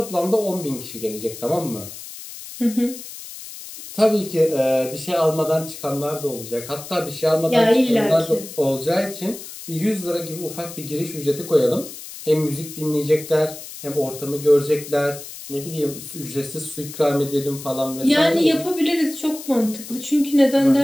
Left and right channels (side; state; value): left; noise; hiss, 13 dB below the sound